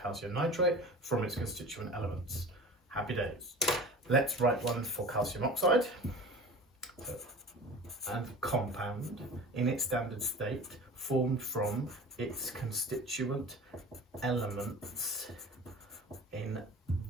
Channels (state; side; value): normal; both; correlation 0.38